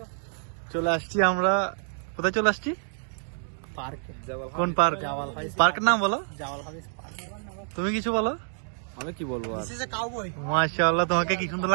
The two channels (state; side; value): silent; left; digital silence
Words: চলে আসছি আমরা, কোথায় চলে আসছি? পার্কে। কোন পার্ক? পার্কের নাম বলো। তুমি কিছু বলো। আমি কি বলবো আর? মাশাআল্লাহ, তোমাকে কি সুন্দর